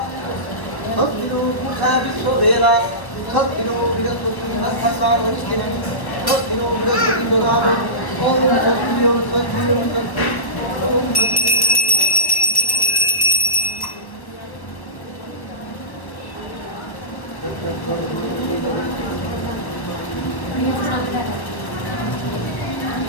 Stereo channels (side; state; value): right; late; 1.2 ms